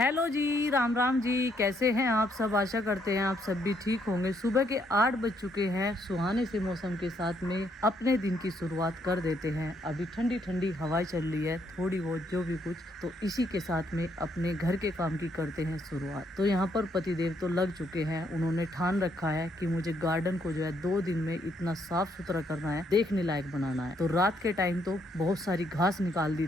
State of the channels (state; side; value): normal; both; correlation 0.72